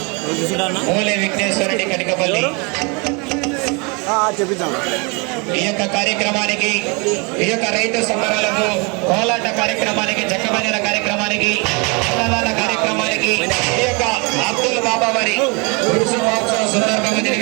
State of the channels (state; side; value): quieter; left; 30.7 dB